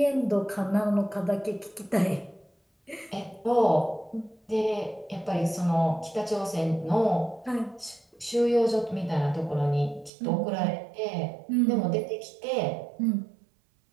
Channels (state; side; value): drops out; left; at 10.1 s